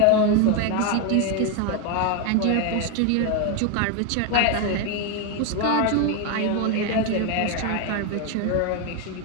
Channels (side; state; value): both; different; correlation 0.01